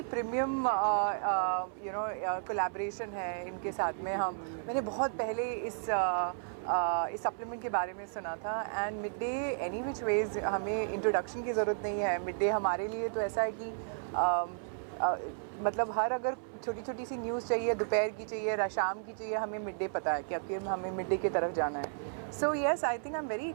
प्रीमियम कोलैबोरेशन है इनके साथ में। मैंने बहुत पहले इस सप्लीमेंट के बारे में सुना था, and Midday any which ways हमें इंट्रोडक्शन की ज़रूरत नहीं है। मिड डे हमारे लिए तो ऐसा है कि मतलब हर अगर छोटी छोटी सी न्यूज़ चाहिए, दोपहर की चाहिए, शाम की चाहिए, हमें मिड डे पता है कि अब हमें मिड डे की तरफ जाना है। So yes, I think I'm very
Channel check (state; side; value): silent; left; 55 dB below the other